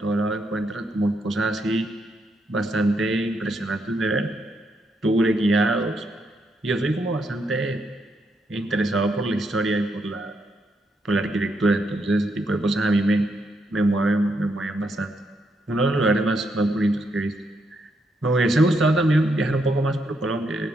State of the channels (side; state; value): both; normal; correlation 0.79